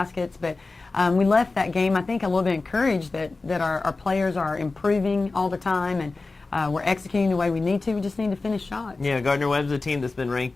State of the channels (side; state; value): right; quieter; 3.6 dB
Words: but we left that game, I think, a little bit encouraged that our players are improving all the time, and we're executing the way we need to. We just need to finish shots. Yeah, Gardner-Webb's a team that's been